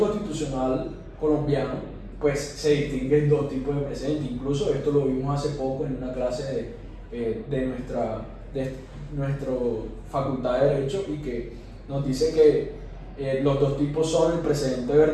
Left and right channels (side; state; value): both; identical; correlation 1.00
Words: colombiano pues, se distinguen dos tipos de precedentes. Incluso esto lo vimos hace poco en una clase de nuestra facultad de Derecho, y que nos dice que los dos tipos son el precedente